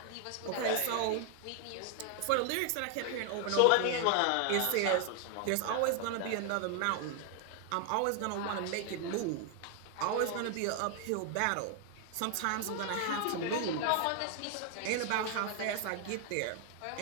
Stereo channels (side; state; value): both; different; correlation 0.00